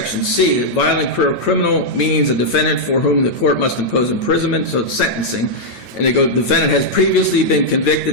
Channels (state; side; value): late; right; 9.0 ms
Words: C, that violent career criminal means a defendant for whom the court must impose imprisonment, so it's sentencing. And they go, defendant has previously been